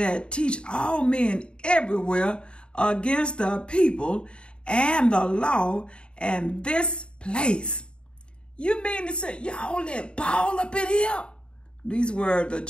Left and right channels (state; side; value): late; right; 0.053 ms